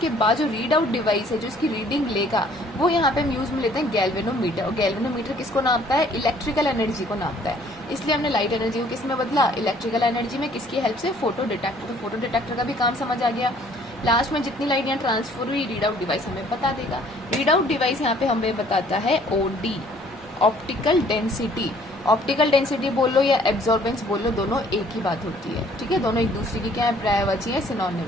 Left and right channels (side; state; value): both; normal; correlation 0.59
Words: बाद जो रीड आउट डिवाइस है जो इसकी रीडिंग लेगा वो यहाँ पे हम यूज में लेते हैं गैल्वेनोमीटर। और गैल्वेनोमीटर किसको नापता है, इलेक्ट्रिकल एनर्जी को नापता है। इसलिए हमने लाइट एनर्जी को किस में बदला, इलेक्ट्रिकल एनर्जी में। किसकी हेल्प से, फोटो डिटेक्टर। तो फोटो डिटेक्टर का भी काम समझ आ गया। लास्ट में जितनी लाइट यहाँ ट्रांसफर हुई, रीड आउट डिवाइस हमें बता देगा। रीड आउट डिवाइस यहाँ पे हमें बताता है OD, optical density. Optical density बोल लो या एब्जॉर्बेंस बोल लो, दोनों एक ही बात होती है। ठीक है, दोनों एक दूसरे की क्या है, पर्यायवाची है,